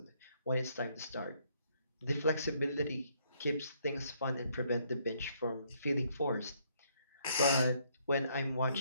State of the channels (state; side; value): inverted; both; correlation -0.69